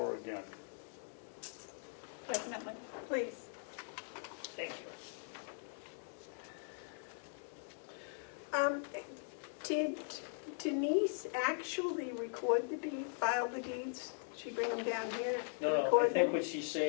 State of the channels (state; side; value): silent; right; digital silence